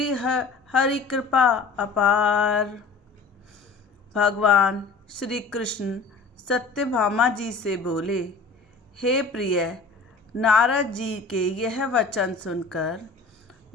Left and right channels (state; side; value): quieter; right; 4.3 dB